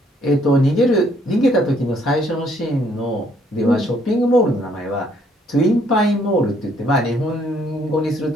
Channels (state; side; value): normal; both; correlation 0.66